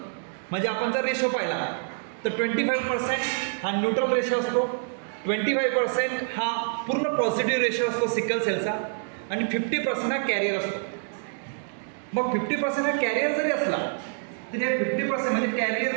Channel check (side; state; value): left; silent; 60 dB below the other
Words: म्हणजे आपण जर रेशो पाहिला तर 25% हा न्यूट्रल रेशो असतो, 25% हा पूर्ण पॉझिटिव्ह रेशो असतो सिकल सेलचा आणि 50% हा कॅरियर असतो. मग 50% हा कॅरियर जरी असला तरी हे 50% म्हणजे